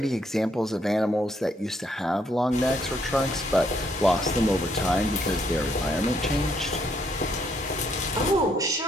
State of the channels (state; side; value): normal; both; correlation 0.72